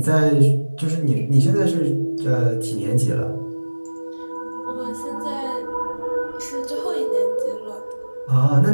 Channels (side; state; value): both; inverted; correlation -1.00